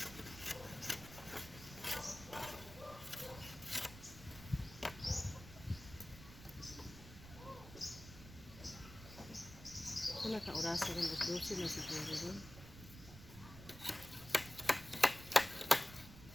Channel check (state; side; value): noise; right; rumble, 15 dB below the sound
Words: Kung naka-orasa rin, 12 na siguro rin.